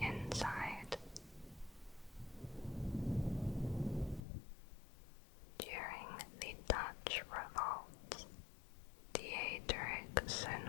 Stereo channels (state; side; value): drops out; right; at 4.2 s